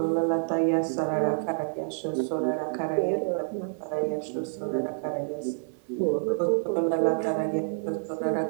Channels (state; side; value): silent; left; digital silence